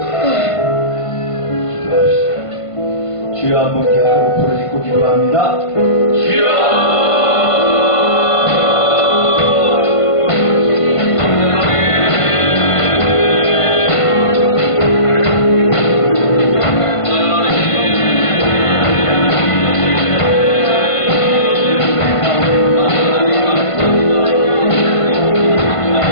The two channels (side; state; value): right; late; 1.5 ms